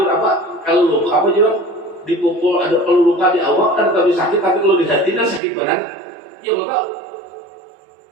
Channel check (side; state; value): left; drops out; at 5.4 s